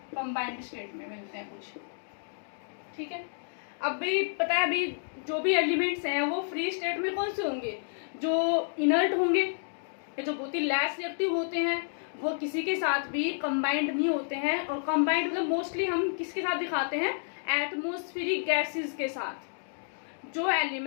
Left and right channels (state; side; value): silent; right; digital silence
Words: कंबाइंड स्टेट में मिलते हैं कुछ। ठीक है, अब भी पता है, अभी जो भी एलिमेंट्स हैं वो फ्री स्टेट में कौन से होंगे, जो इनर्ट होंगे या जो बहुत ही लेस रिएक्टिव होते हैं, वो किसी के साथ भी कंबाइंड नहीं होते हैं। और कंबाइंड मतलब मोस्टली हम किसके साथ दिखाते हैं, एटमॉस्फेरिक गैसेस के साथ। जो